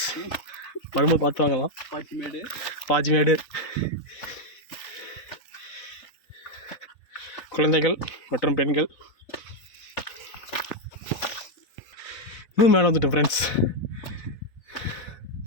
வரும்போது பார்த்து வாங்கலாம். பாச்சிமேடு குழந்தைகள் மற்றும் பெண்கள். இன்னும் மேலே வந்துட்டேன் ஃப்ரெண்ட்ஸ்.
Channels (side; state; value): right; late; 4.2 ms